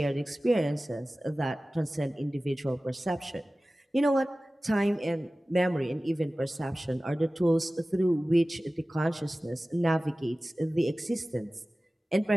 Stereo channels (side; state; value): both; normal; correlation 0.97